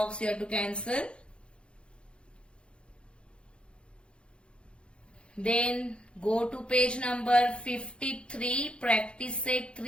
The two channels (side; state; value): right; late; 0.057 ms